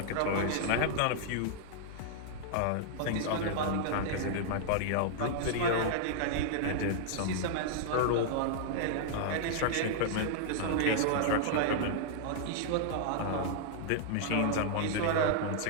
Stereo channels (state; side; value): different; both; correlation -0.01